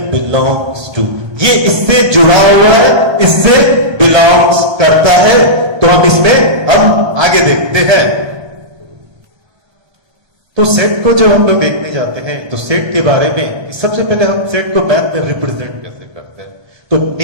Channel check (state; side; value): late; left; 1.3 ms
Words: बिलोंग्स टू। ये इससे जुड़ा हुआ है, इससे बिलोंग्स करता है। तो हम इसमें हम आगे देखते हैं। तो सेट को जब हम लोग देखने जाते हैं तो सेट के बारे में सबसे पहले हम सेट को मैथ में रिप्रेजेंट कैसे करते हैं। तो